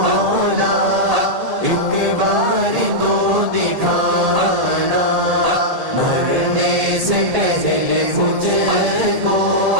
ایک بار تو دکھانا، مرنے سے پہلے مجھ کو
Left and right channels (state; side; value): late; left; 1.8 ms